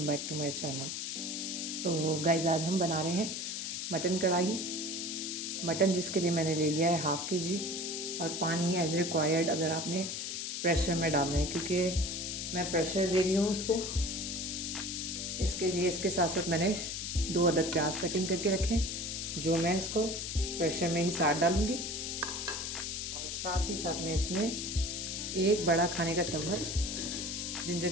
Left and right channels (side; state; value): left; noise; hiss, 4 dB below the sound